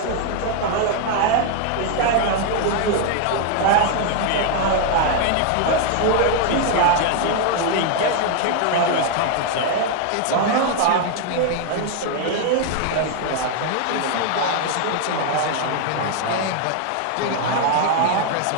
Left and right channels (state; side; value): different; both; correlation 0.00